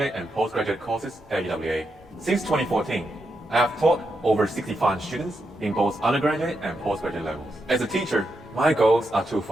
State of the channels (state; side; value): normal; both; correlation 0.84